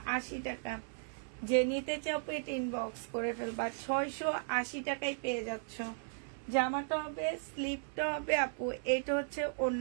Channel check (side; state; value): left; silent; 54 dB below the other